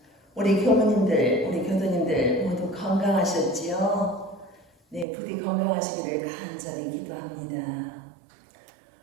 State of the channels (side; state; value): left; drops out; at 5.1 s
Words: 우리 교무님들, 우리 교도님들 모두 건강하셨지요? 부디 건강하시기를 간절히 기도합니다.